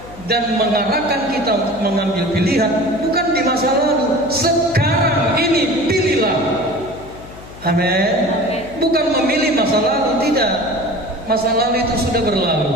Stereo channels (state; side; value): noise; left; hum, 17 dB below the sound